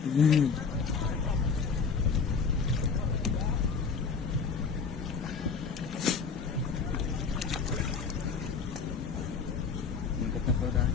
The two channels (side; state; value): right; quieter; 5.4 dB